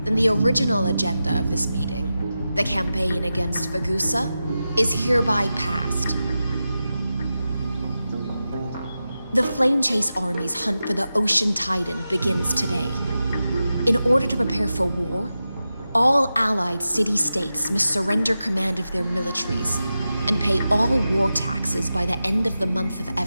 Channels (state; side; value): inverted; both; correlation -0.92